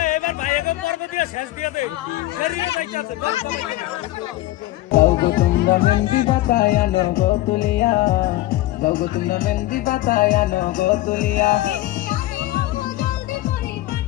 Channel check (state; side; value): quieter; right; 16.5 dB